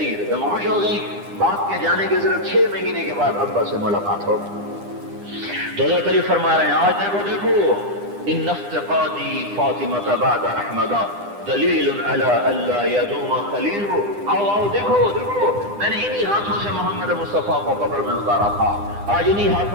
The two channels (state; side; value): late; left; 9.9 ms